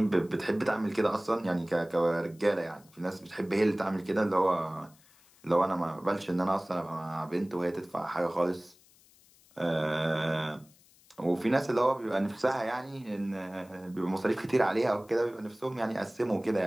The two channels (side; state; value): left; noise; hiss, 28 dB below the sound